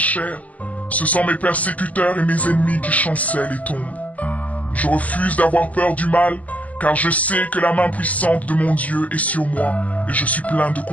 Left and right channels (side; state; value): right; late; 0.074 ms